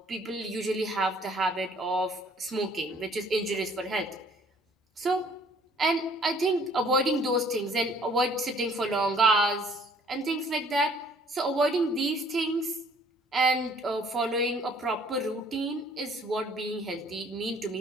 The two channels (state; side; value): normal; both; correlation 0.58